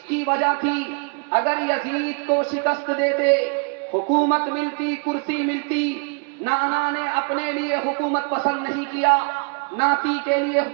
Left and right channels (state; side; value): quieter; left; 36.8 dB